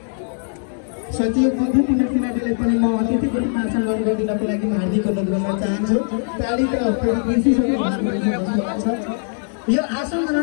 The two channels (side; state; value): right; silent; digital silence